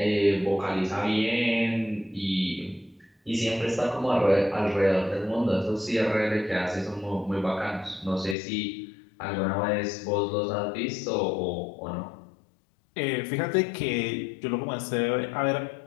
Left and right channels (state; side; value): drops out; right; at 8.3 s